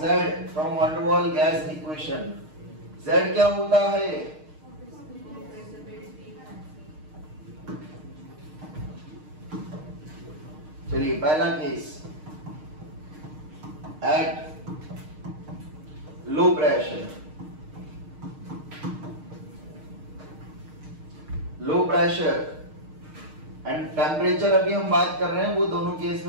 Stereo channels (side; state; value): left; late; 6.5 ms